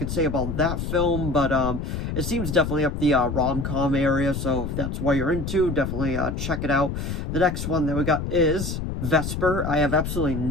say about that film. But it seems definitely up the rom-com area, so if that's what you're into, definitely check it out. The next one that we got is Vesper. I have absolutely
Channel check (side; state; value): left; noise; rumble, 4 dB below the sound